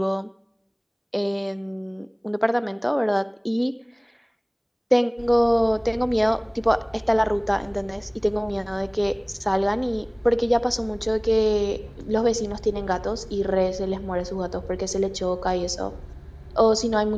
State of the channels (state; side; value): identical; both; correlation 1.00